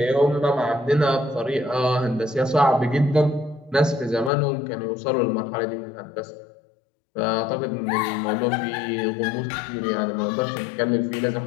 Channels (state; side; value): drops out; right; at 4.3 s